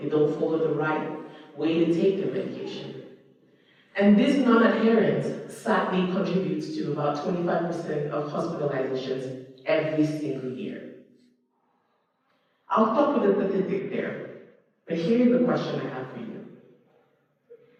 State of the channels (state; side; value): identical; both; correlation 1.00